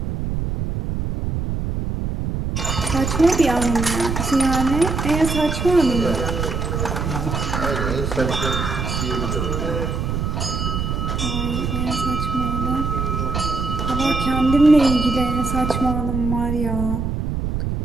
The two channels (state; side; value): noise; right; rumble, 2 dB below the sound